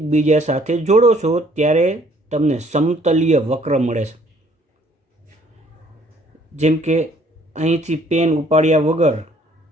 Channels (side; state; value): both; normal; correlation 0.61